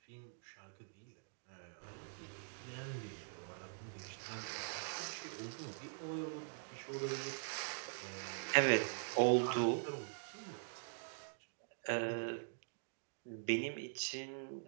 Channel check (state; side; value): silent; left; digital silence